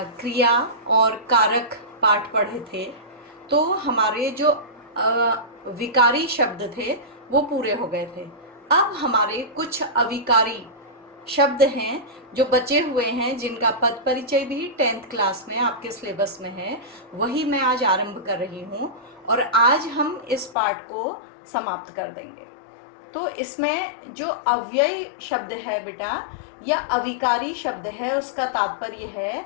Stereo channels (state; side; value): drops out; right; at 20.6 s